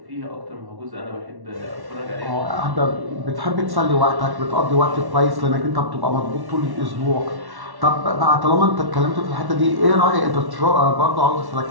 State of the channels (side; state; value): left; late; 1.1 ms